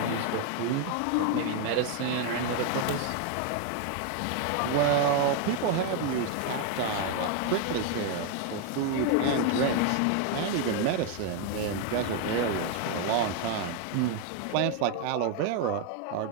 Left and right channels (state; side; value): different; both; correlation 0.01